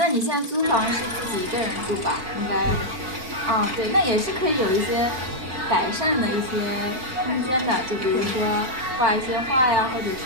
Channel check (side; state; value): left; late; 4.5 ms